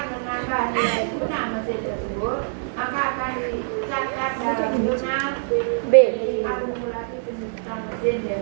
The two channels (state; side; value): silent; left; digital silence